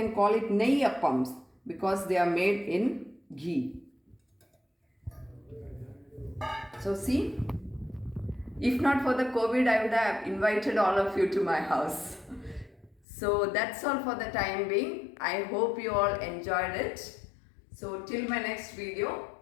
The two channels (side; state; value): right; drops out; at 13.0 s